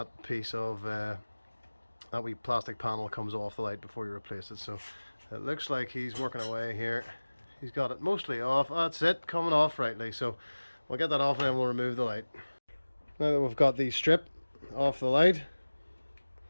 piece of that wee plastic panel comes off the light before you replace it. So it looks like he's working away here. He's got it mostly off. That's it, coming off rightly. So we'll get that off and then we'll remove the light. Now that we've got the strip off the light,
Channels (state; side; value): inverted; both; correlation -1.00